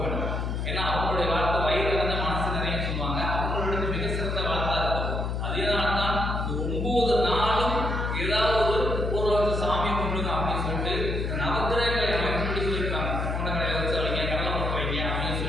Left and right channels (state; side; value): noise; left; hum, 1 dB below the sound